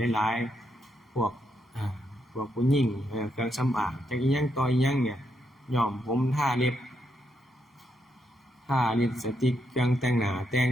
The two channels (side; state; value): both; normal; correlation 0.79